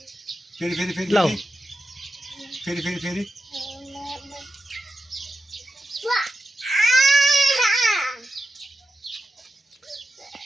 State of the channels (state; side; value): normal; both; correlation 0.89